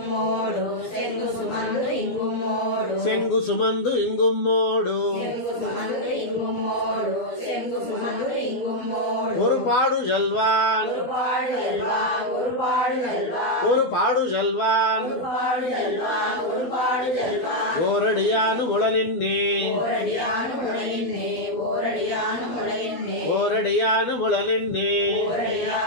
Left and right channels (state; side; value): late; right; 12 ms